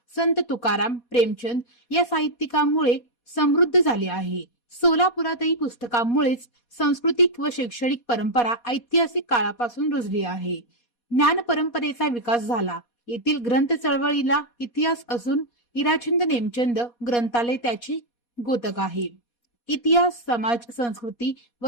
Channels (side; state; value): right; late; 4.2 ms